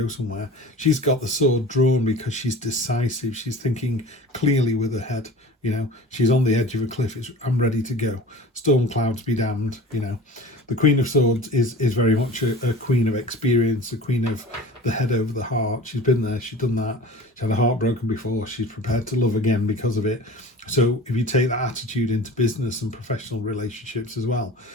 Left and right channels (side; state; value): both; normal; correlation 0.39